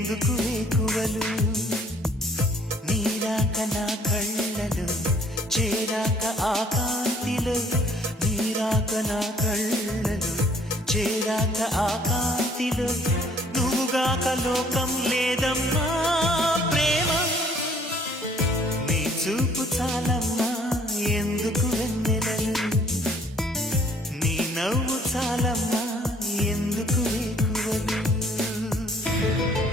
వేకువలు, నీరాక నా కళ్ళలు చేరాక ఆ కాంతిలో, నీరాక నా కళ్ళలు చేరాక ఆ కాంతిలో, నువ్వుగాక లోకం లేదమ్మా ప్రేమ, నీ చూపు చాలమ్మా ఎందుకు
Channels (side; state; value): both; normal; correlation 0.60